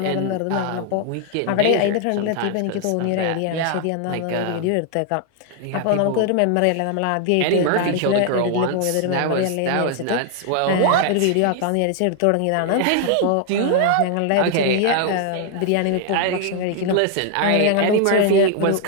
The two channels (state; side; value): different; both; correlation 0.00